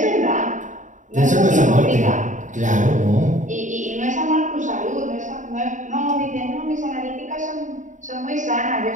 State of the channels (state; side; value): late; left; 0.36 ms